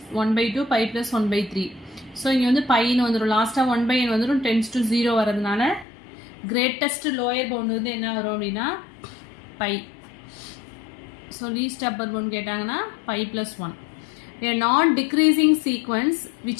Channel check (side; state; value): right; drops out; at 5.9 s